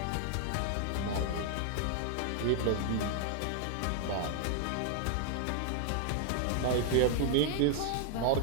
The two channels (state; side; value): different; both; correlation 0.00